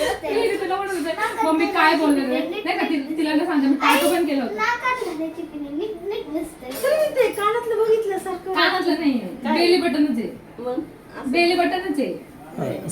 मी तुला म्हणत होते, मम्मी काय बोलणार आहे? नाही का तिला ना सांगते, मी टाटू पण केलं होतं. नाकात घालायची पिन नीट नीट दिसतंय. तरी ते कानातलं बघितल्यासारखं. कानातलं नाहीये, बेली बटनच आहे. मग बेली बटनच आहे.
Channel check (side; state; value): both; identical; correlation 1.00